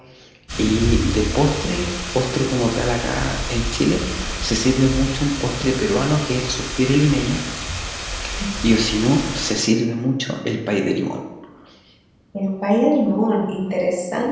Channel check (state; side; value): identical; both; correlation 1.00